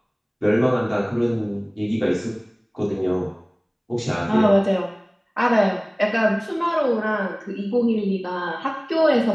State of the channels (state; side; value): identical; both; correlation 1.00